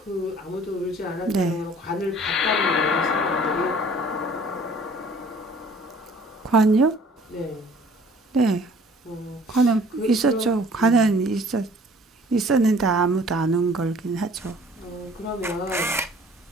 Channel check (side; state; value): both; normal; correlation 0.53